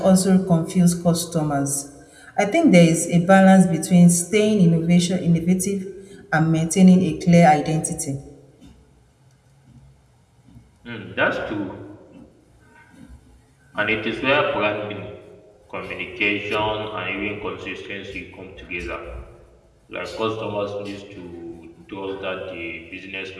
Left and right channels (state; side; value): identical; both; correlation 1.00